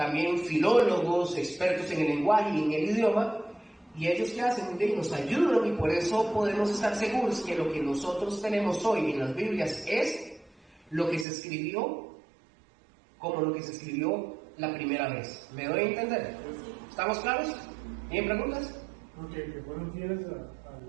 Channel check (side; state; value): left; drops out; at 11.2 s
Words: filólogos, expertos en el lenguaje y en el idioma, y ellos que hacen, nos ayudan, y por eso podemos estar seguros que lo que nosotros tenemos hoy en las Biblias es lo que se escribió como lo que se escribió la primera vez. ¿Me doy a entender? ¿Estamos claros? ¿Tienen preguntas? Ok, que fueron fieles